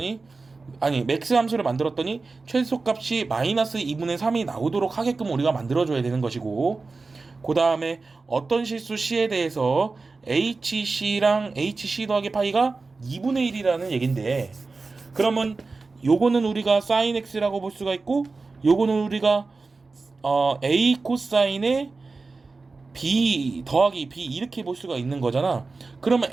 아니 맥스 함수를 만들었더니 최소값이 마이너스 2분의 3이 나오도록 하게끔 우리가 만들어줘야 되는 것이고, 그 다음에 어떤 실수 C에 대해서 HC랑 HC 더하기 파이가 2분의 1이라는 얘긴데, 그러면 요거는 우리가 sin X라고 볼 수가 있고, 요거는 우리가 A 코사인의 B 더하기 B 이렇게 볼 수가 있는 거잖아. 그러면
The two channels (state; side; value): quieter; left; 3.9 dB